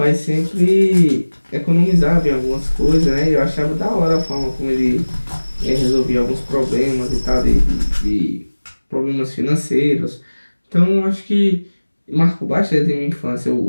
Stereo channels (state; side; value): inverted; both; correlation -1.00